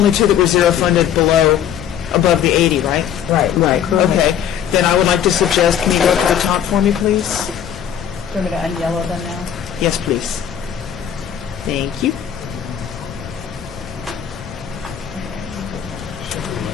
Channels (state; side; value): quieter; right; 9.4 dB